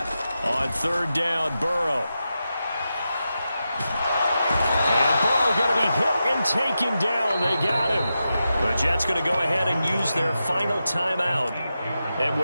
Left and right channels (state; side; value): inverted; both; correlation -0.89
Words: On 3rd down, Burrow. And Burrow going to be hit and taken down. They got him. The Jets going to go ahead and use their final timeout. And